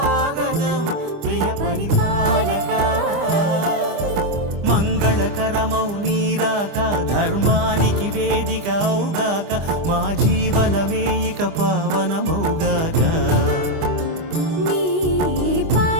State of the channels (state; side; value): late; left; 25 ms